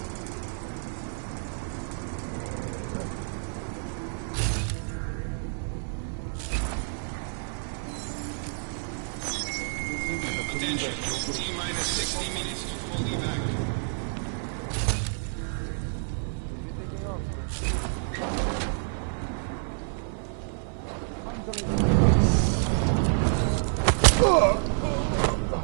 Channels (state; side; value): silent; left; 59 dB below the other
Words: Attention. T-minus 60 minutes to full evac.